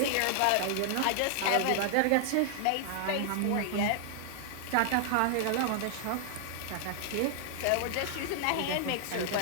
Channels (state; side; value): different; both; correlation 0.00